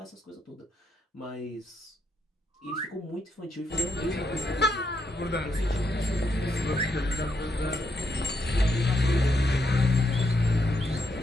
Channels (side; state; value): both; normal; correlation 0.78